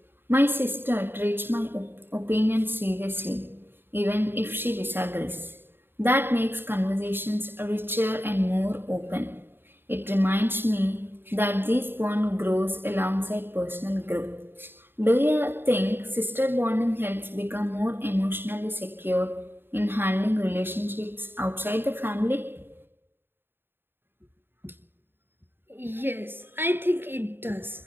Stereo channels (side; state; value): left; late; 0.10 ms